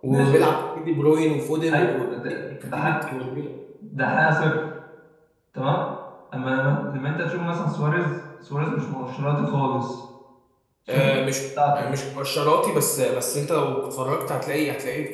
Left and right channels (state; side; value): identical; both; correlation 1.00